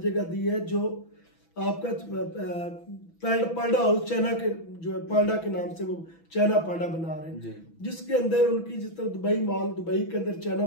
दी है, जो आपका पांडा हाउस चाइना के जो है पांडा के नाम से वो चाइना पांडा बना रहे हैं, जिसके अंदर उनकी जिस तरह दुबई मॉल, दुबई के अंदर चाइना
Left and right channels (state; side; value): late; right; 6.0 ms